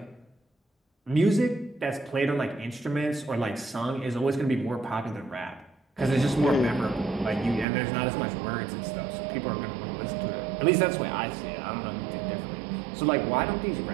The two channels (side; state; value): left; drops out; at 7.7 s